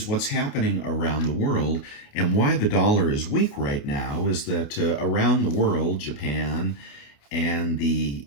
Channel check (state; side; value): late; right; 28 ms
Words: what's happening around the world. And why the dollar is weak right now is that around the world, Japan and the